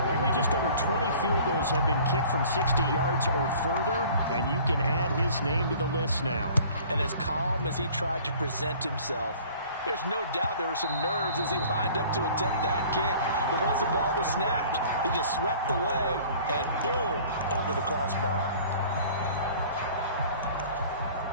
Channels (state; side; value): inverted; both; correlation -0.49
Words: Only just over 20 field goals have been kicked from 60 yards or further, and you can add his name to the list now. And as calm as he tried to present himself, there's no doubt there were some nerves as he lined up to attempt that kick. But once the ball was snapped, he just swept the leg and boom, over the crossbar.